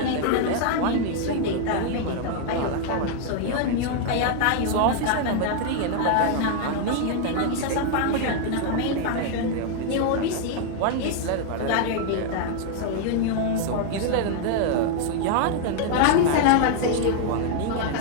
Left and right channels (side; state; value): both; different; correlation 0.00